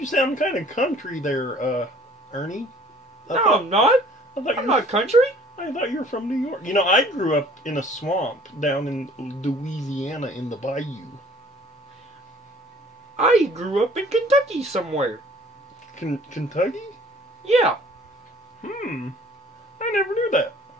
sound kind of country there, Ernie. No, I'm not. I'm not country. I thought you were from New York. You know, I grew up in a swamp down in Louisiana in the bayou. I grew up in Kentucky somewhere. Kentucky? Yeah. I never knew that.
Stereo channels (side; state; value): both; normal; correlation 0.53